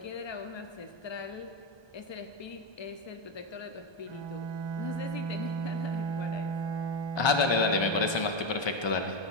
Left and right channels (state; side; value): late; right; 1.2 ms